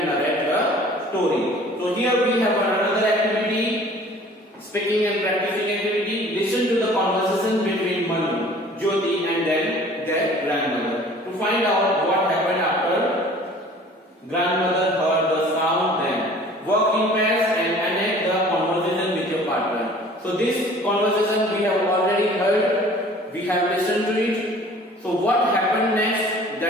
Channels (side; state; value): both; normal; correlation 0.49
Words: narrate the story. So here we have another activity, speaking and practicing activity. Listen to the conversation between Manu, Jyoti and then their grandmother. To find out what happened after grandmother heard the sound, then work in pairs and enact the conversation with your partner. So this conversation we have already heard, we have listened to it. So what happened next